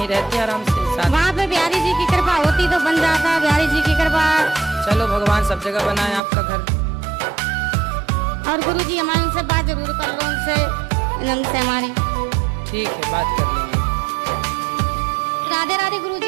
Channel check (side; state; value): left; drops out; at 6.2 s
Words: रहते आराम से साथ। वहाँ पे बिहारी जी की कृपा होती तो बन जाता, बिहारी जी की कृपा। चलो भगवान सब जगह बनाए आपका घर। और गुरुजी हमारे उनसे बात जरूर कर लो, उनसे हमारी। ठीक है, बात कर लेंगे। राधे राधे